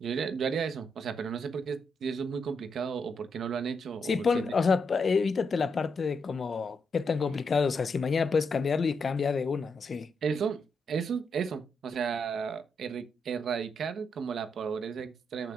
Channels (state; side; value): normal; both; correlation 0.81